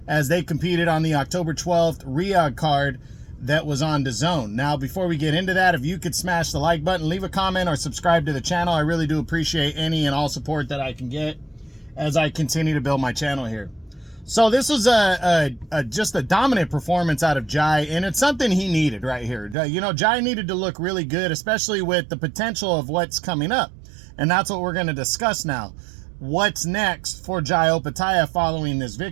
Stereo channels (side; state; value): left; drops out; at 19.6 s